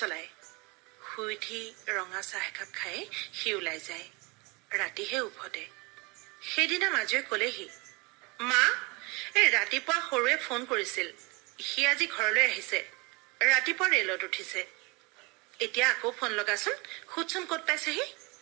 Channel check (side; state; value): left; quieter; 27.3 dB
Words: শুই উঠি ৰঙা চাহ একাপ খাই সি ওলাই যায়। ৰাতিহে উভতে। সেইদিনা মাজুৱে কলেহি, মা, এই ৰাতিপুৱা সৰুৱে ফোন কৰিছিল, সি আজি ঘৰলৈ আহিছে, ৰাতিপুৱা ৰেলত উঠিছে। এতিয়া আকৌ ফোন লগাচোন, সুধচোন ক'ত পাইছেহি।